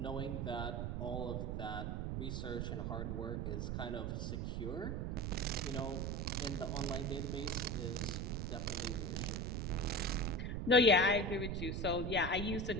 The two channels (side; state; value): right; noise; rumble, 1 dB below the sound